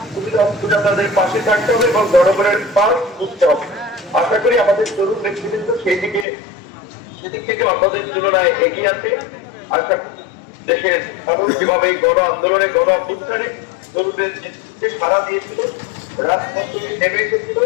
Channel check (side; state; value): right; drops out; at 6.2 s